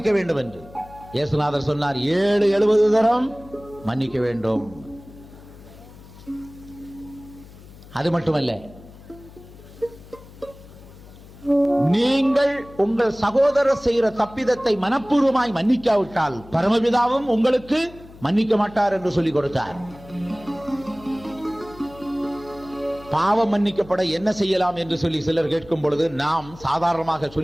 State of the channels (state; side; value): noise; left; hum, 20 dB below the sound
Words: வேண்டும் என்று. இயேசுநாதர் சொன்னார், 70 தரம் மன்னிக்க வேண்டும். அது மட்டுமல்ல, நீங்கள் உங்கள் சகோதரர் செய்கிற தப்பிதத்தை மனப்பூர்வமாய் மன்னிக்காவிட்டால் பரமபிதாவும் உங்களுக்கு மன்னிக்க மாட்டார் என்று சொல்லிக் கொடுத்தார். பாவம் மன்னிக்கப்பட என்ன செய்யலாம் என்று சொல்லி சிலர் கேட்கும் பொழுது நாம் சாதாரணமாக